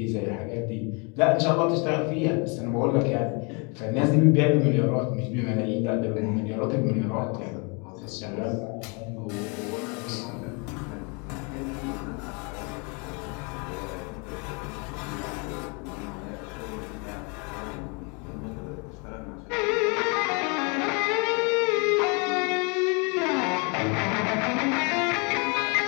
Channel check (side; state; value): right; quieter; 32.9 dB